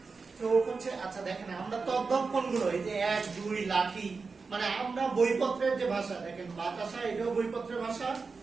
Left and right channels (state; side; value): quieter; left; 4.6 dB